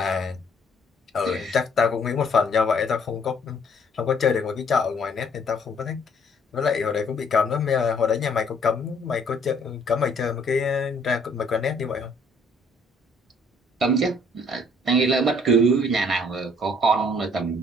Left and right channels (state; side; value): normal; both; correlation 0.61